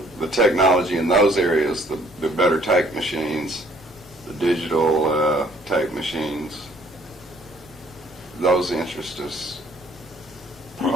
the technology in those areas, the better tape machines, the digital tape machines, those interest us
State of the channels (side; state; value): both; normal; correlation 0.61